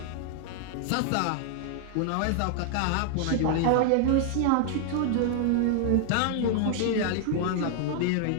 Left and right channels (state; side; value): different; both; correlation 0.00